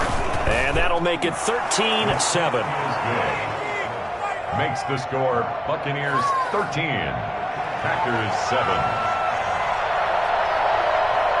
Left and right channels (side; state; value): both; identical; correlation 1.00